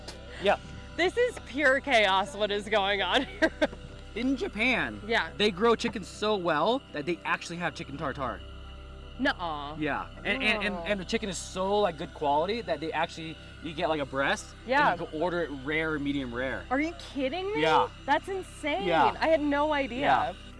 Yeah. This is pure chaos. What is going on here? In Japan, Yeah. they grow chicken so well that they actually have chicken tartare. Nuh-uh. Yeah, and the chicken is so like good quality that they actually you get like a breast. Yeah. And you can order it rare or medium rare. Are you kidding me? Yeah. That's insane. Yeah. I had no idea. Yeah.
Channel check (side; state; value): both; identical; correlation 1.00